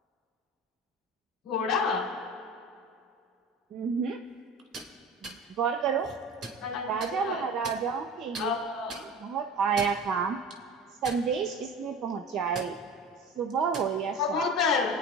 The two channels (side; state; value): both; normal; correlation 0.34